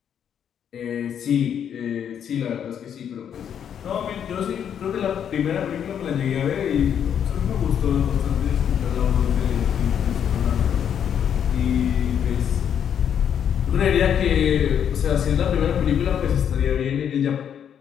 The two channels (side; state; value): right; quieter; 8.7 dB